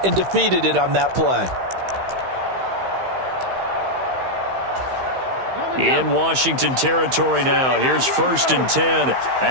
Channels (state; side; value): late; left; 15 ms